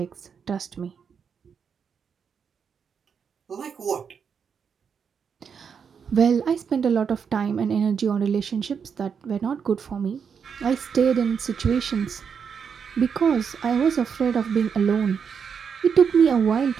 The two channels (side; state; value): left; quieter; 6.7 dB